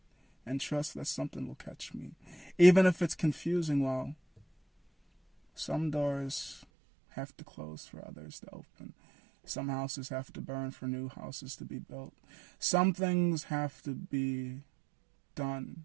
and trust that something will catch me? Even if it's confusing, well, some doors have to close for others to open. Some houses have to burn for new houses to be built. Some things have to be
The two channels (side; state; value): left; drops out; at 6.7 s